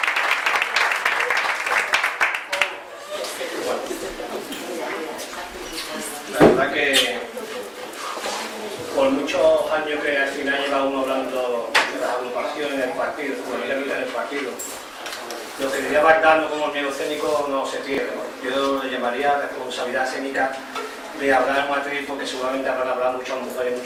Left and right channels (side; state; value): both; identical; correlation 1.00